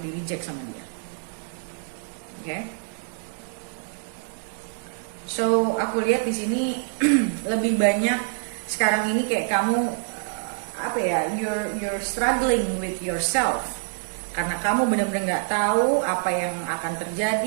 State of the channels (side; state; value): left; silent; digital silence